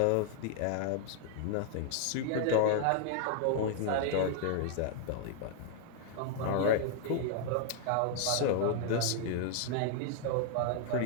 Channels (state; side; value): different; both; correlation 0.00